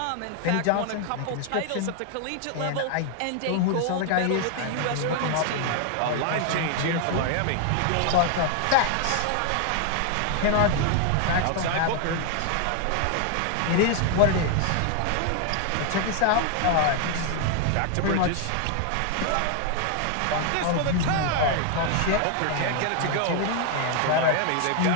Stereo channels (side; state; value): both; different; correlation 0.00